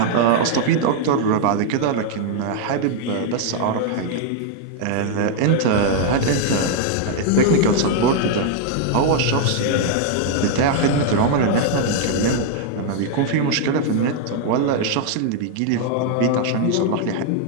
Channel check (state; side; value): different; both; correlation 0.00